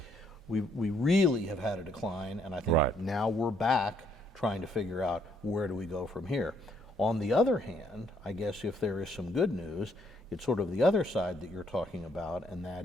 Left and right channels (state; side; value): normal; both; correlation 0.69